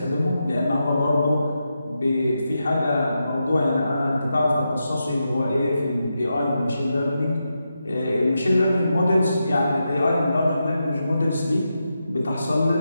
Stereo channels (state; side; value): inverted; both; correlation -0.87